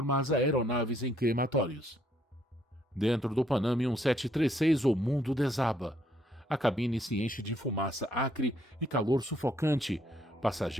as aeronaves em crematórios. Dentro do Pan Am 1736, o mundo desaba. A cabine se enche de fumaça acre e calor sufocante.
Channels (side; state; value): both; normal; correlation 0.69